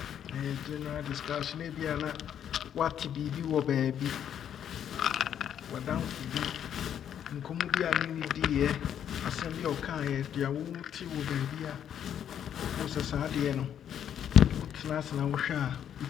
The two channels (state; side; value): quieter; right; 9.4 dB